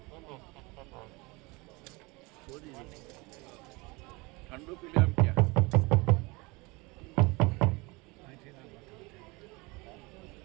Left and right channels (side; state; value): left; quieter; 25.5 dB